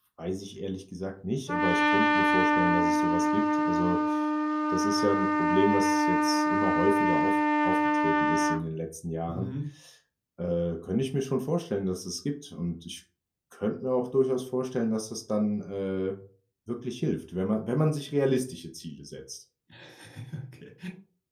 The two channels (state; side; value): identical; both; correlation 1.00